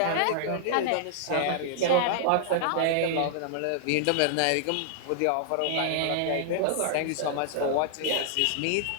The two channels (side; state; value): both; different; correlation -0.01